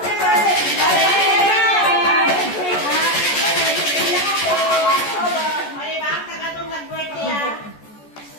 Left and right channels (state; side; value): late; right; 14 ms